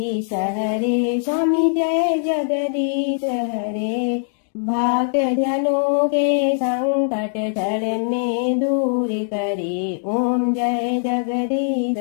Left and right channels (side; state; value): right; silent; digital silence